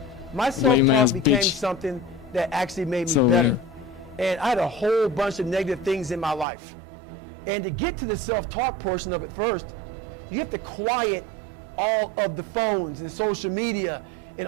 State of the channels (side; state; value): left; drops out; at 6.5 s